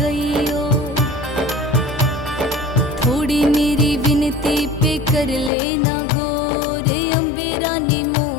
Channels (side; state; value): right; drops out; at 5.5 s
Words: थोड़ी मेरी विनती पे कर लेना गौर, अम्बे रानी